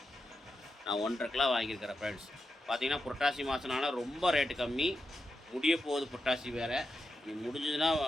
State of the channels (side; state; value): both; normal; correlation 0.88